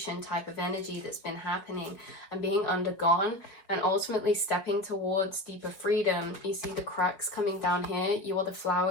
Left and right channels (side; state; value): right; late; 4.8 ms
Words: type of energy that's been happening and being undergone, and ultimately stepping towards deeper freedom. You see the cracks coming down here. You are the